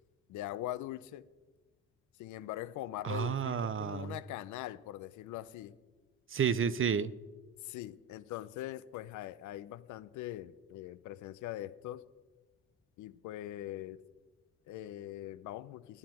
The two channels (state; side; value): normal; both; correlation 0.16